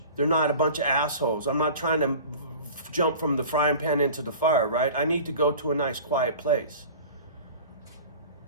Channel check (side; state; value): both; inverted; correlation -0.40